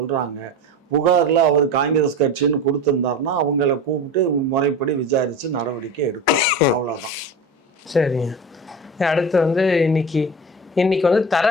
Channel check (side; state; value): both; normal; correlation 0.29